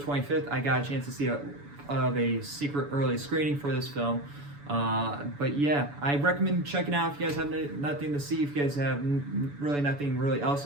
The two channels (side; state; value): left; late; 7.0 ms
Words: I got a chance to see a secret early screening for this film. But yeah, I recommend checking out if you guys have nothing to see. If you guys have really nothing really else